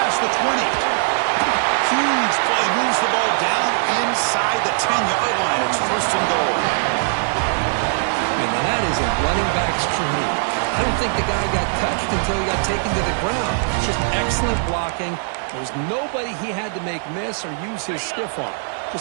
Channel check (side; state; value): left; silent; digital silence